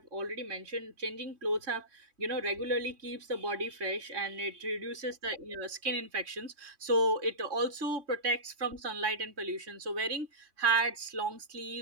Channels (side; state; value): left; late; 3.1 ms